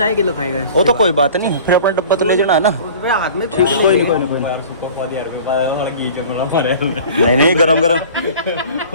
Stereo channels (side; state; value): both; inverted; correlation -0.43